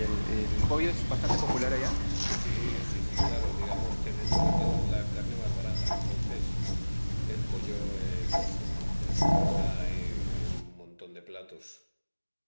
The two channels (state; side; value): inverted; both; correlation -1.00